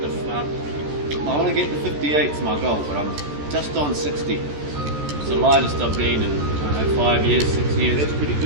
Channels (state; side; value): late; left; 14 ms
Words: the fuck? I want to get to 58's my goal, but I'm just on 60. It's the lightest I've been in, I don't know, 5 years, 6 years. That's pretty